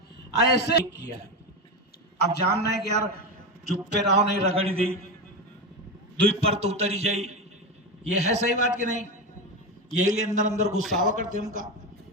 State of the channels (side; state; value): both; normal; correlation 0.17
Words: ऐसे किया है। अब जानना है कि यार चुप पे रहो नहीं रगड़ी दी दुई पर तो उतरी जाई, ये है सही बात कि नहीं? यही लिए अंदर अंदर गुस्सावा करते हमका